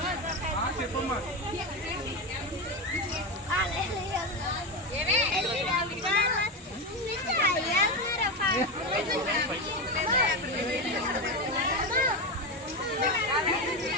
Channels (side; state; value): both; normal; correlation 0.16